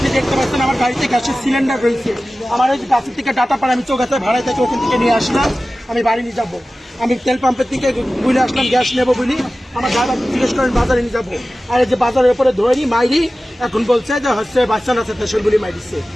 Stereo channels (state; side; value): normal; both; correlation 0.96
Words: দেখতে পাচ্ছেন আমার গাড়িতে গ্যাসের সিলিন্ডার রয়েছে। আমার ওই গাছের থেকে ডাটা পাড়া আমি চৌগাছায় ভাড়ায় থেকে ওখান থেকে নিয়ে আসলাম। আমি বাড়ি নিয়ে যাবো। আমি তেল পাম্পের থেকে বুঝে আসলাম গ্যাস নেবো বলি। আমার ড্রাইভার জিজ্ঞেস করেন বাজারে নিয়ে যাবো। আর এই যে বাজারের উপরে ধরি মাইরি, এখন বলছে যে হচ্ছে বাচ্চা না আছে সেগুলি মাইরিছে।